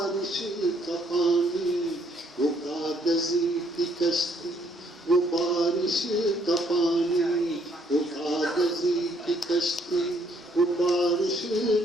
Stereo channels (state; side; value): normal; both; correlation 0.68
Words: का पानी, वो कागज की कश्ती वो बारिश का पानी, वो कागज की कश्ती वो बारिश